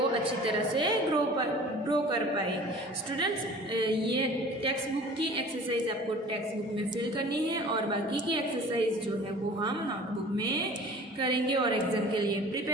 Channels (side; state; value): both; normal; correlation 0.45